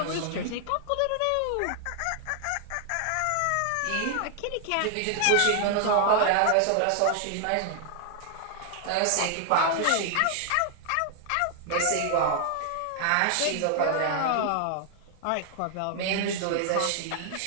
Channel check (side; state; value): both; different; correlation 0.00